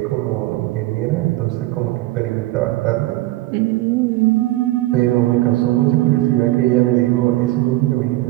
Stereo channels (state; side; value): quieter; left; 17.7 dB